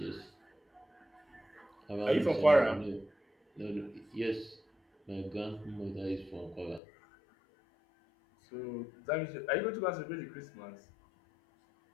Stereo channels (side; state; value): right; drops out; at 6.8 s